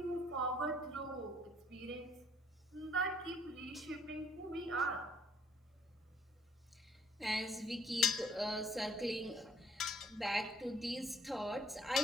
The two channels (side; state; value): both; normal; correlation 0.62